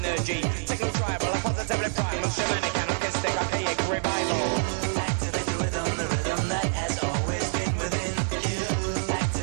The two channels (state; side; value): silent; left; digital silence